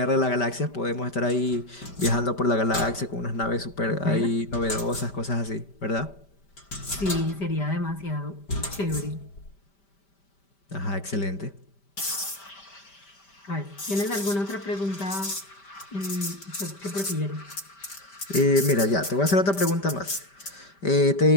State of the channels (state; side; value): late; right; 5.1 ms